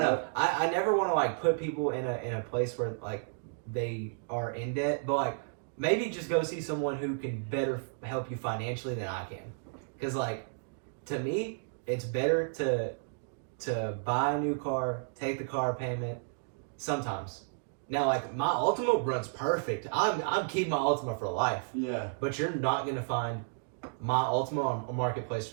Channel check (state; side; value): silent; left; digital silence